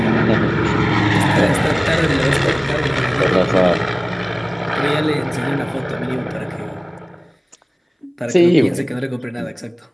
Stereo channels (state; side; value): identical; both; correlation 1.00